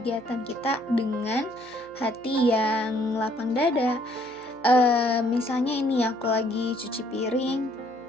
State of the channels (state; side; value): noise; right; hum, 28 dB below the sound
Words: kita dengan hati yang lapang dada. Misalnya ini aku lagi cuci piring,